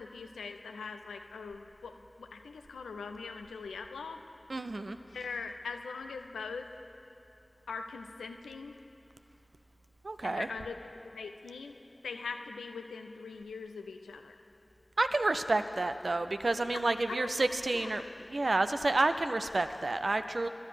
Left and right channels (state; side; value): normal; both; correlation 0.96